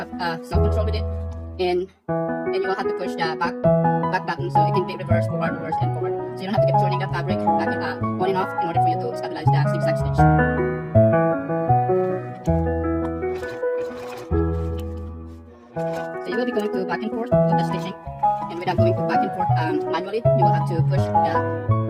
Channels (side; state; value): both; identical; correlation 1.00